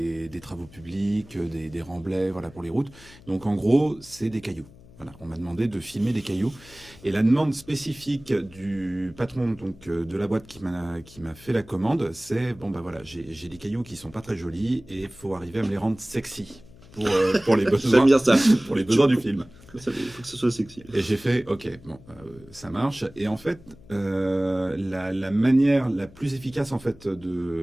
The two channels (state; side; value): noise; left; hum, 22 dB below the sound